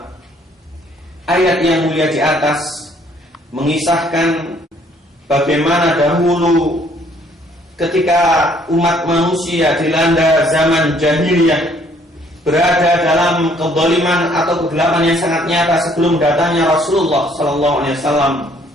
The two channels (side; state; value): both; normal; correlation 0.63